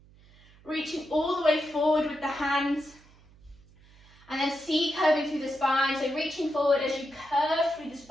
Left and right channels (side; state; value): right; noise; hum, 26 dB below the sound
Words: reaching all the way forward with the hands, and then C curving through the spine, so reaching forward as you curve through the